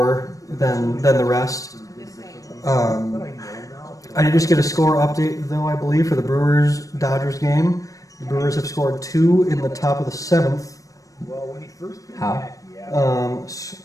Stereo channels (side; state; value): right; late; 0.16 ms